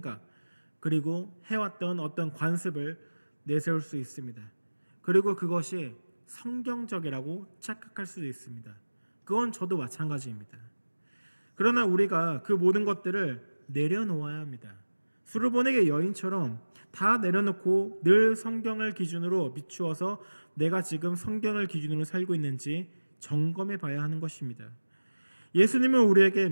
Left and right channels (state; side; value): inverted; both; correlation -1.00